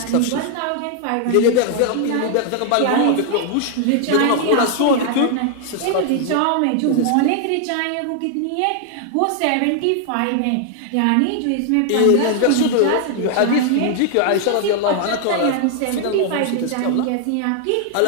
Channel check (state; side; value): different; both; correlation 0.00